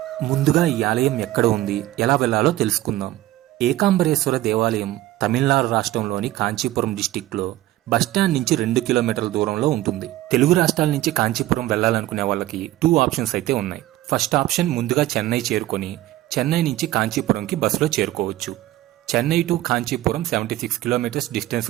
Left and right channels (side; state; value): left; quieter; 15.7 dB